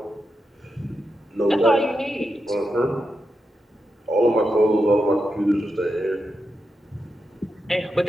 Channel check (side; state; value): both; normal; correlation 0.87